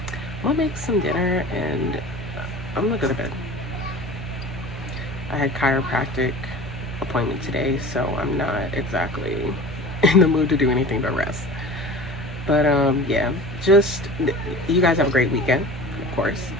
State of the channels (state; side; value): normal; both; correlation 0.38